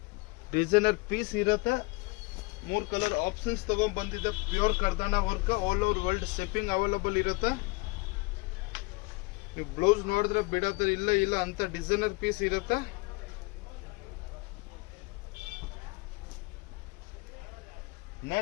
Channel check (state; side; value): quieter; right; 26.4 dB